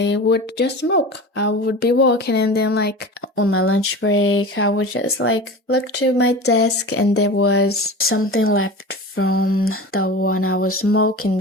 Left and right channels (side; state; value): both; normal; correlation 0.33